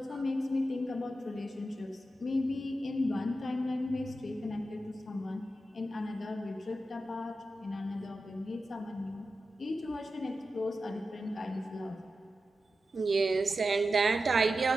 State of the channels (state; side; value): normal; both; correlation 0.91